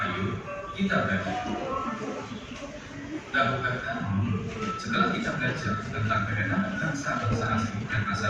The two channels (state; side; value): identical; both; correlation 1.00